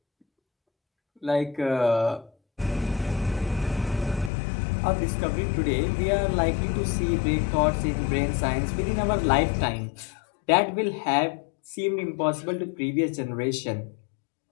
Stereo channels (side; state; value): right; drops out; at 4.3 s